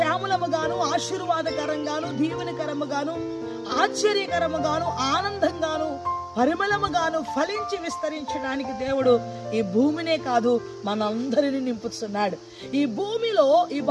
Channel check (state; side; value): identical; both; correlation 1.00